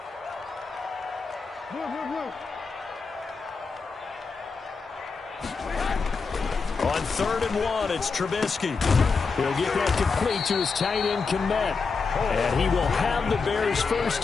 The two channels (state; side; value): quieter; right; 4.8 dB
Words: On 3rd and 1, it's Trubisky. He'll get that complete to his tight end, Kmet. And he will have the Bears 1st